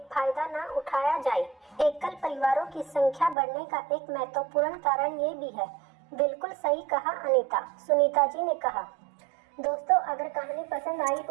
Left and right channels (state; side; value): drops out; left; at 3.4 s